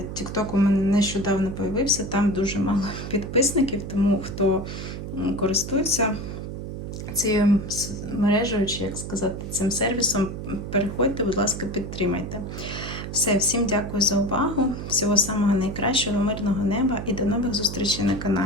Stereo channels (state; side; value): noise; right; hum, 7 dB below the sound